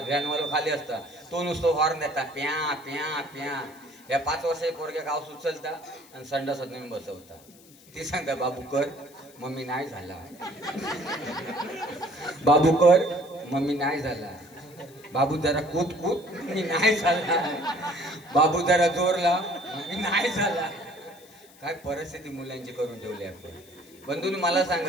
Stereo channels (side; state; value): left; noise; hiss, 25 dB below the sound